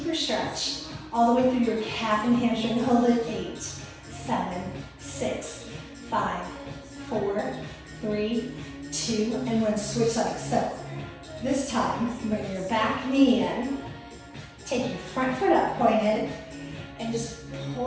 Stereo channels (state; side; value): identical; both; correlation 1.00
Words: stretch all the way through your calf and hamstring. Hold it. 8, 7, 6, 5, 4, 3, 2, and 1. Switch legs. So this time, bring your back knee in, take your front foot up, pointed, and just